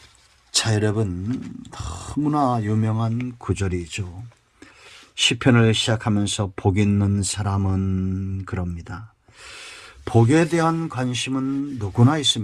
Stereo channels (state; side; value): identical; both; correlation 1.00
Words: 자, 여러분, 너무나 유명한 구절이죠. 시편을 시작하면서 복 있는 사람은 그럽니다. 복에 대한 관심은 누구나